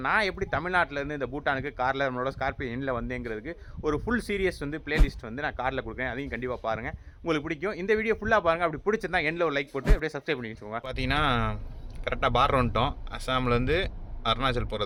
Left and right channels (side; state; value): both; identical; correlation 1.00